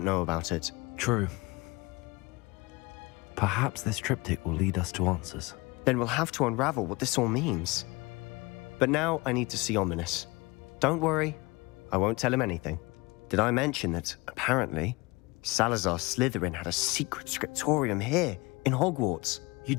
know about it. True. Perhaps this triptych will lead us to answers. Then we'll have to unravel what this all means. But now I need to see Ominous. Don't worry, I won't tell him anything. Did I mention that, apparently, Salazar Slytherin had a secret scriptorium here, in Hogwarts? You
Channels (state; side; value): quieter; right; 24.5 dB